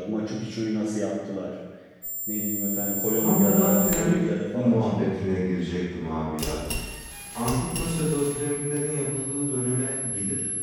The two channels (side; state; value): both; identical; correlation 1.00